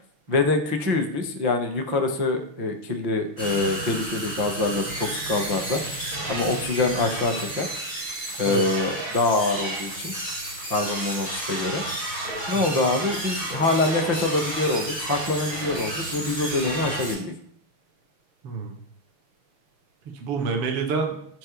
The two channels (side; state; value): left; late; 6.3 ms